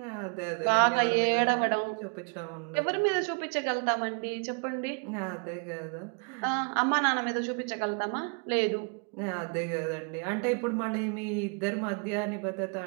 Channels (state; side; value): quieter; left; 38.4 dB